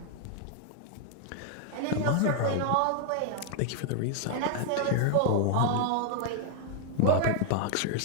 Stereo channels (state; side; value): different; both; correlation 0.00